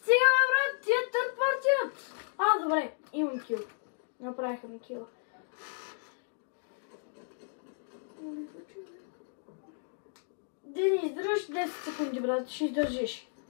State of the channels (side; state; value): right; silent; digital silence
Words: брат, тия търт партия! Добре, имам кил. Направиха ми кила. Дени, издържаш 10 секунди, брат, ще издържиш.